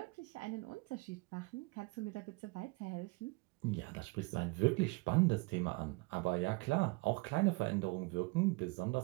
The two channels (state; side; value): quieter; left; 26.0 dB